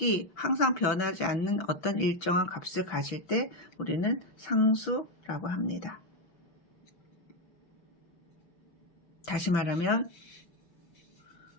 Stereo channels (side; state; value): right; late; 5.9 ms